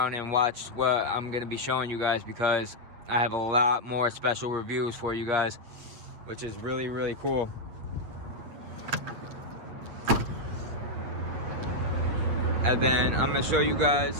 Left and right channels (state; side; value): late; left; 8.7 ms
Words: and watch what I'm going to be showing you guys, because I have a lot more special reviews for you guys, which is really cool. And then I'm going to show you